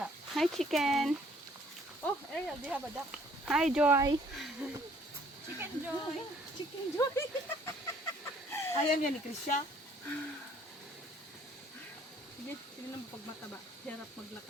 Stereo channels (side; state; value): both; normal; correlation 0.60